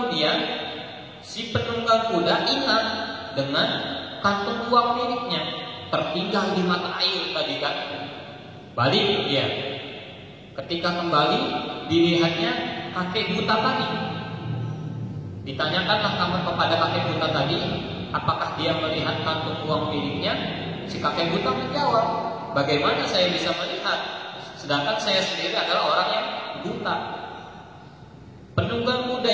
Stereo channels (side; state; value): both; identical; correlation 1.00